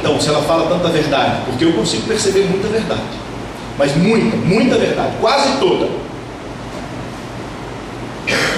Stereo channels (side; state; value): both; identical; correlation 1.00